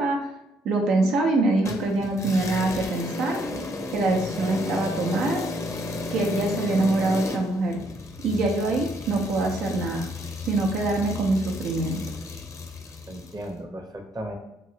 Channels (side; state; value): both; normal; correlation 0.70